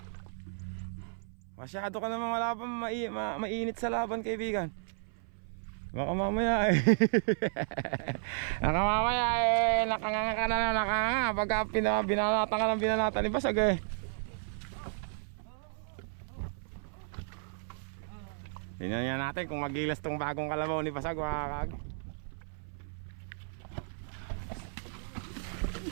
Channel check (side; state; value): left; silent; 56 dB below the other